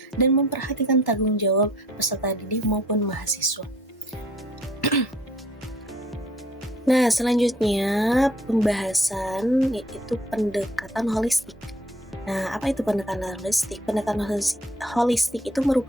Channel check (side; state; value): both; normal; correlation 0.58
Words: dan memperhatikan tanggung jawab peserta didik maupun mahasiswa. Nah, selanjutnya pembahasan yaitu pendekatan holistik. Nah, apa itu pendekatan holistik? Pendekatan holistik itu